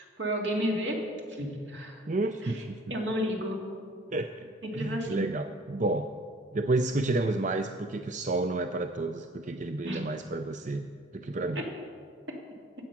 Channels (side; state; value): both; normal; correlation 0.52